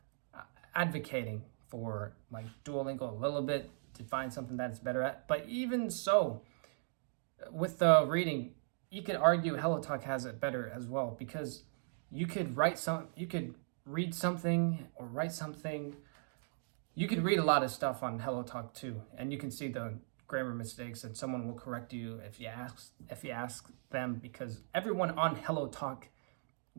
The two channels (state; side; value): silent; left; digital silence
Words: advocating for like Duolingo a little bit to find something that it's better at. But even so, with the reading, you could argue HelloTalk has it better as well, because you could read something or write something. You could read a lot of stuff on HelloTalk too, and you can see the grammar mistakes, and someone will correct you if you ask them, because everyone on HelloTalk